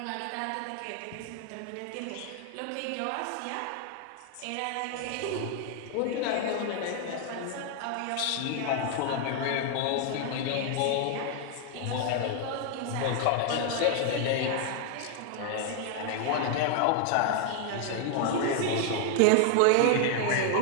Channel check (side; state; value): both; different; correlation 0.00